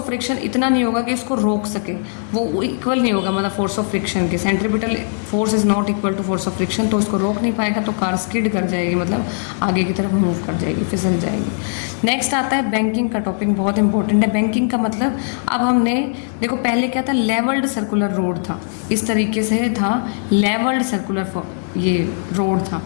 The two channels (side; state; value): right; silent; digital silence